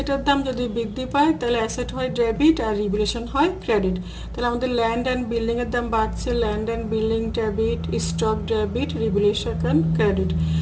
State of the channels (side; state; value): both; identical; correlation 1.00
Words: দাম যদি বৃদ্ধি পায় তাহলে অ্যাসেট হয় ডেবিট আর রিভ্যালুয়েশন হয় ক্রেডিট। তাহলে আমাদের ল্যান্ড অ্যান্ড বিল্ডিংয়ের দাম বাড়ছে, land and building debit stock debit revaluation credit.